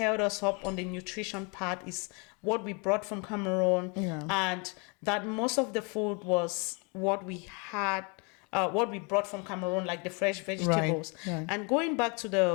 us up on the nutrition part is what we brought from Cameroon, and that most of the food was what we had, what we brought from Cameroon, like the fresh vegetables. And going back to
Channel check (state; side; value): quieter; right; 32.7 dB